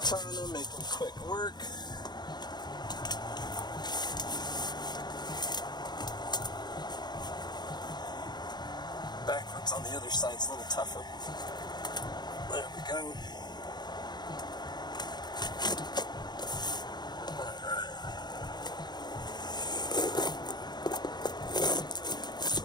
making quick work. Backwards on the other side's a little tougher. There we go. Alright.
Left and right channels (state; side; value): late; right; 0.21 ms